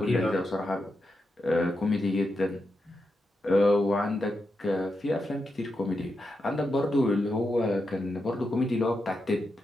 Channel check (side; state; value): both; normal; correlation 0.86